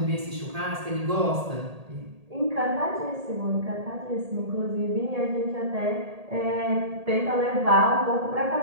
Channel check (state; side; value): late; left; 1.8 ms